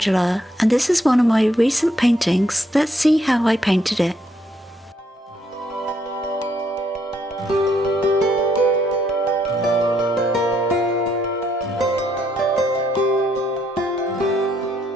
and this is one of my recent paintings. Let's see how I painted it.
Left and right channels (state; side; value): normal; both; correlation 0.72